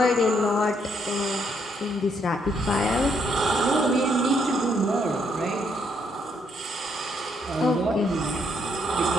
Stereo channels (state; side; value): normal; both; correlation 0.73